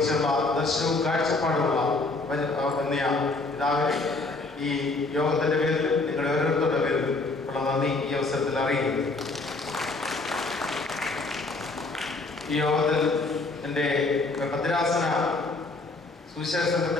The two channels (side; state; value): right; quieter; 3.3 dB